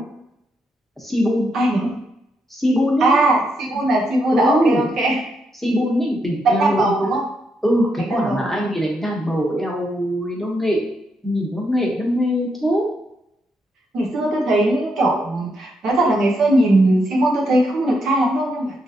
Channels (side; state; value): both; normal; correlation 0.79